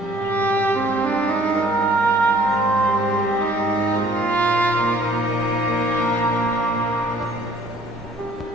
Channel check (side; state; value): both; normal; correlation 0.57